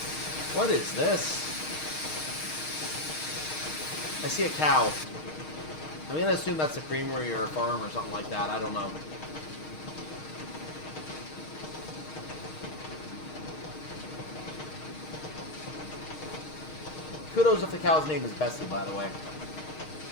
What is this? I see a cow. I'm going to assume that's a creamery or a farm or something like that. I don't know. Kudos if the cow's name is Bessie, by the way.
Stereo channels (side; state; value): right; late; 6.4 ms